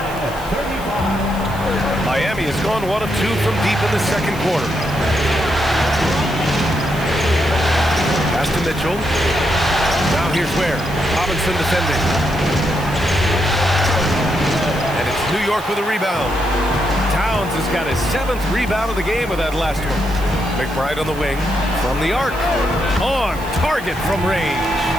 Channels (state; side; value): noise; right; hiss, 19 dB below the sound